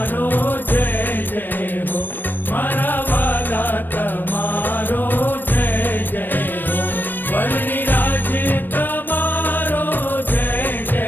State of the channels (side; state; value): right; late; 0.093 ms